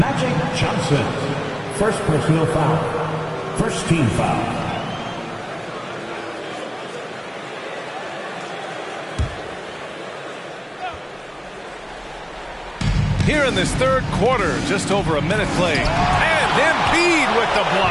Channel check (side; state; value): both; identical; correlation 1.00